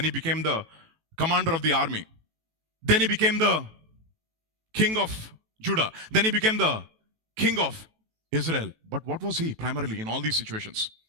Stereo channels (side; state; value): left; late; 18 ms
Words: he became the commander of the army. Then he became the king of Judah. Then he became the king of Israel. But what was he primarily in all these situations?